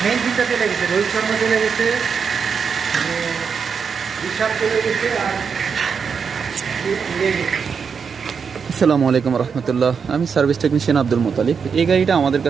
মেইন তিনটা চলে গেছে, রোহিত শর্মা চলে গেছে, ঋষভ চলে গেছে, আর আসসালামু আলাইকুম রহমতুল্লাহ। আমি সার্ভিস টেকনিশিয়ান আব্দুল মোতালিব। এই গাড়িটা আমাদের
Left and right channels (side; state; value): left; quieter; 6.1 dB